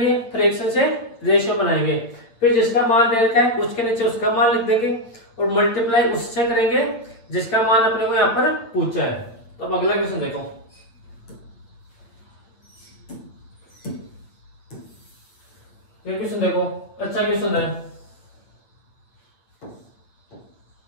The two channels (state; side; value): late; right; 8.8 ms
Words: फ्रैक्शन से रेशियो बनाएंगे, फिर जिसका मान दे रखा है उसके नीचे उसका मान लिख देंगे, और मल्टीप्लाई उससे करेंगे जिसका मान अपने को यहाँ पर पूछा है। तो अब अगला क्वेश्चन देखो, ये क्वेश्चन देखो, अच्छा क्वेश्चन है,